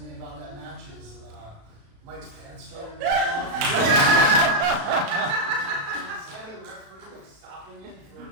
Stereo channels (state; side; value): late; left; 36 ms